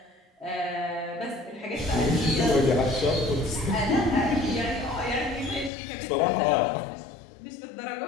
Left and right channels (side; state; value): right; drops out; at 5.7 s